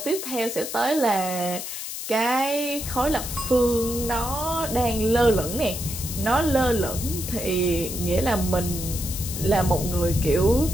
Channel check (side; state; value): left; noise; hiss, 7 dB below the sound